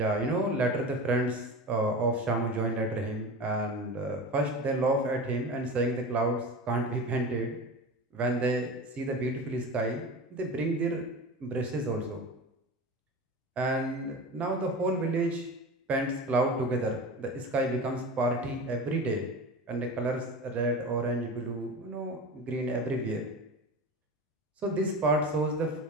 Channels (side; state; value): both; normal; correlation 0.30